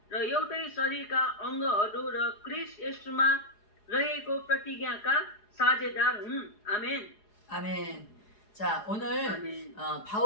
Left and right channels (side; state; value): right; late; 4.8 ms